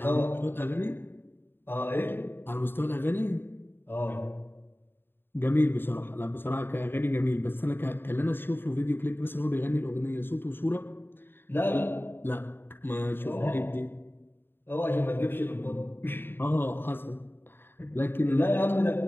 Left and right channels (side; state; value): right; late; 0.10 ms